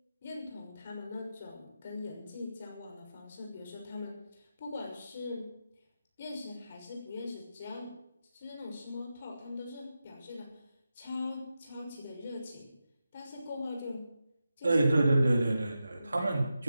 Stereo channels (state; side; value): inverted; both; correlation -0.90